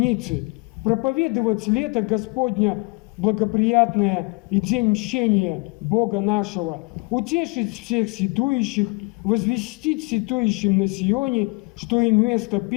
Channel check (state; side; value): quieter; right; 28.4 dB